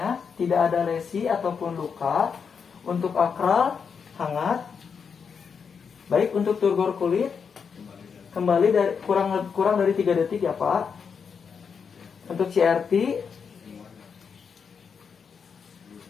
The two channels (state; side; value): quieter; right; 6.2 dB